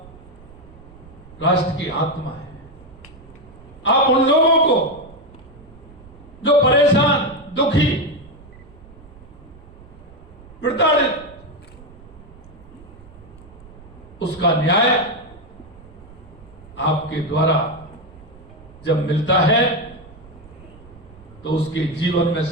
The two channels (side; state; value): right; noise; rumble, 21 dB below the sound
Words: राष्ट्र की आत्मा है। आप उन लोगों को जो परेशान, दुखी, प्रताड़ित, उसका न्याय आपके द्वारा जब मिलता है तो उसके जीवन में